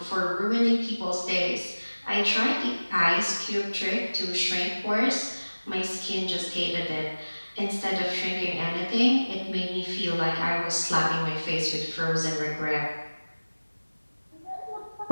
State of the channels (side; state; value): both; inverted; correlation -1.00